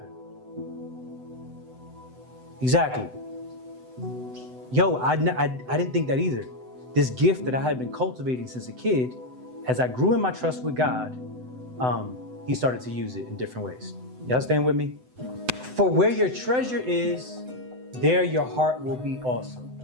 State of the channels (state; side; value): late; left; 7.9 ms